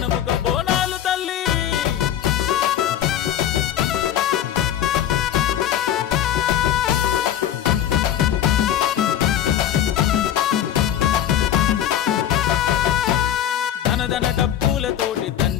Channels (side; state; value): right; quieter; 10.6 dB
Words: బోనాలు తల్లి ధనధన డప్పులతోటి